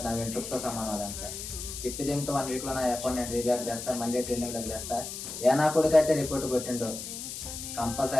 నా వెంట్రుకతో సమానం అదంతా. తిప్పి దీంతో 1 వీక్లో నా అకౌంట్ నేను రీబ్యాక్ చేస్తాను, మళ్ళీ ట్రెండింగ్లోకి తెస్తా. ఏ నా కొడుకు అయితే రిపోర్ట్ కొట్టిండో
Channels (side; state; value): left; noise; hiss, 8 dB below the sound